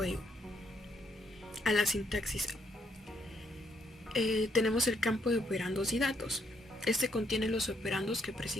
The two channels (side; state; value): both; normal; correlation 0.73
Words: a la sintaxis. Tenemos el campo de operandos y datos. Este contiene los operandos que